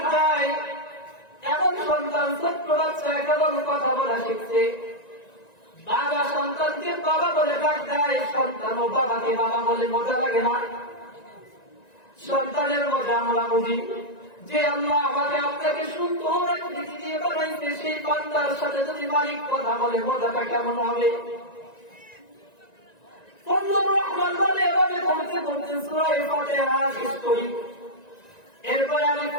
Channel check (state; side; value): late; right; 1.9 ms